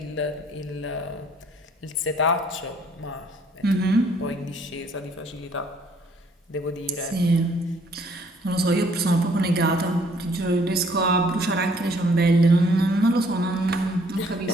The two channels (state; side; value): normal; both; correlation 0.62